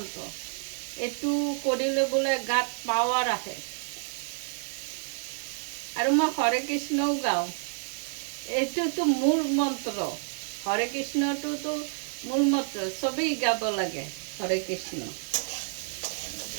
এইটো কৰিলে বোলে গাত পাৱাৰ আহে। আৰু মই হৰে কৃষ্ণও গাওঁ। এইটোতো মূল মন্ত্ৰ, হৰে কৃষ্ণটোতো মূল মন্ত্ৰ, চবেই গাব লাগে হৰে কৃষ্ণ।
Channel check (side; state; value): left; silent; digital silence